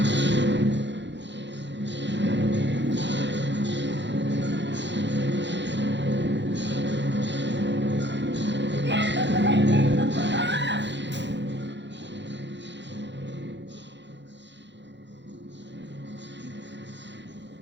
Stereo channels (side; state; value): left; late; 0.52 ms